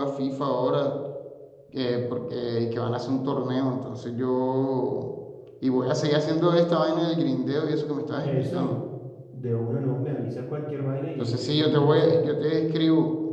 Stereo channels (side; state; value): both; identical; correlation 1.00